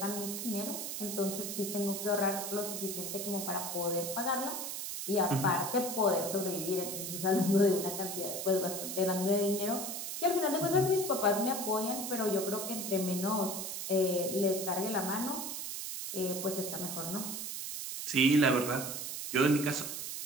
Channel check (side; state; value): right; noise; hiss, 5 dB below the sound